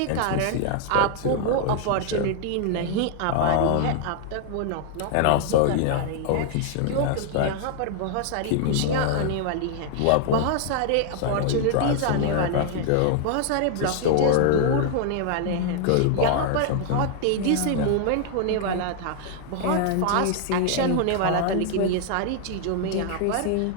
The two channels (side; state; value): both; different; correlation 0.00